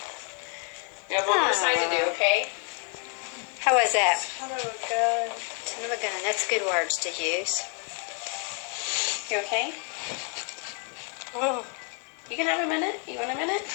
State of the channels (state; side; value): quieter; right; 39.4 dB